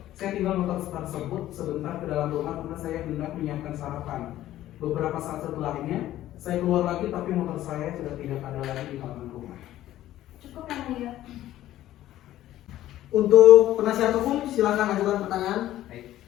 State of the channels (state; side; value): quieter; right; 13.8 dB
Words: saya tinggal motor tersebut sebentar ke dalam rumah karena saya hendak menyiapkan sarapan. Beberapa saat setelahnya, saya keluar lagi tapi motor saya sudah tidak ada lagi di halaman rumah. Cukup yang mulia. Untuk penasihat hukum silakan ajukan pertanyaan. Baik.